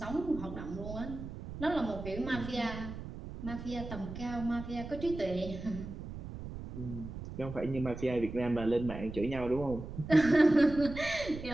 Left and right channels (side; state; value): right; noise; rumble, 10 dB below the sound